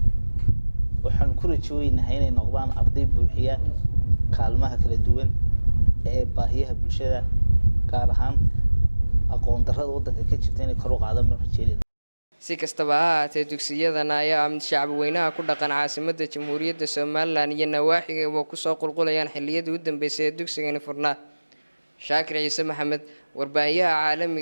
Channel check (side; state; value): both; inverted; correlation -1.00